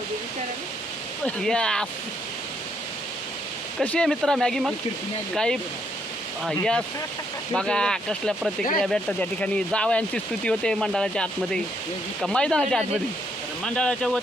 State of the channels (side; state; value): both; normal; correlation 0.74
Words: या कशी आहे मित्रा मॅगी मग काही. यस. बघा कसल्या प्रतिक्रिया भेटतात त्या ठिकाणी. जावयांची स्तुती होते मंडळाच्या आतमध्ये का मैदानाच्या आतमध्ये. मंडळाच्या